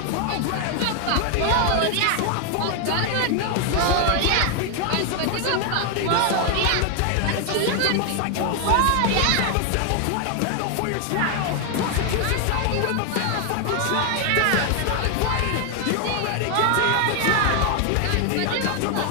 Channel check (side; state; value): both; different; correlation 0.00